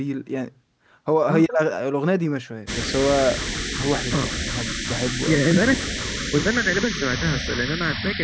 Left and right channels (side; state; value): both; identical; correlation 1.00